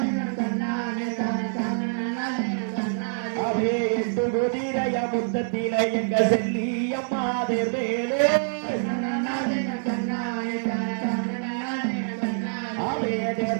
அவே எட்டு குதிரைய முத்தத்தில எங்க செல்லி அம்மா தேர்வேலே அவே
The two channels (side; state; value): left; silent; digital silence